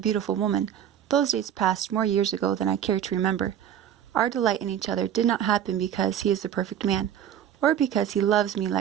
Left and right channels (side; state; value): left; quieter; 9.9 dB